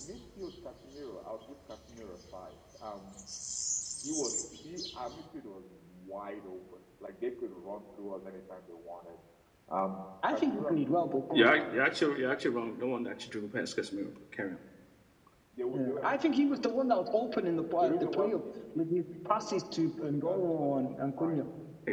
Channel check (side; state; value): both; identical; correlation 1.00